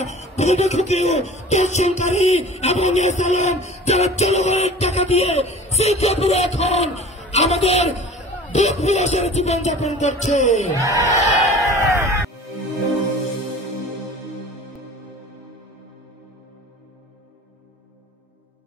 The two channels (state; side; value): normal; both; correlation 0.42